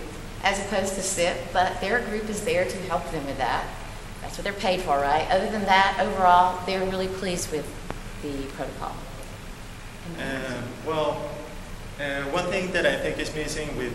as opposed to SIP, but their group is there to help them with that. That's what they're paid for, right? Other than that, overall, they're really pleased with the protocol. One thing that I think is missing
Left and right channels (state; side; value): identical; both; correlation 1.00